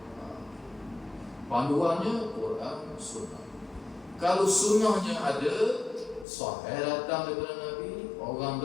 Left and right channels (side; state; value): right; drops out; at 6.2 s